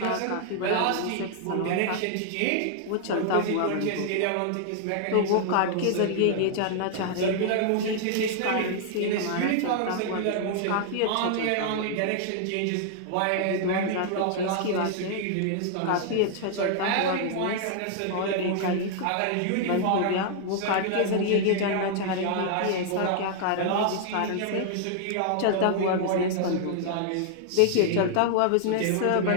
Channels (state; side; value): different; both; correlation -0.01